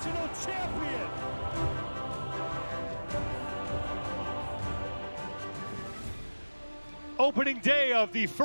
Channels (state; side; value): inverted; both; correlation -1.00